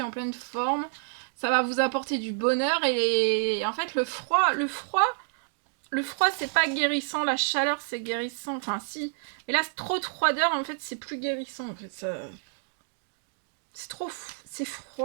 en pleine forme. Ça va vous apporter du bonheur. Et en fait, le froid, c'est pas guérissant. La chaleur, c'est guérissant. Enfin, si. Mais là, trop de froideur, en fait, c'est plus guérissant. En fait, ça... C'est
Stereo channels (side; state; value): left; silent; digital silence